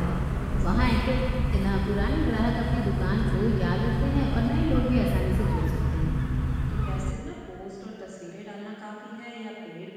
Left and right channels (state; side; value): identical; both; correlation 1.00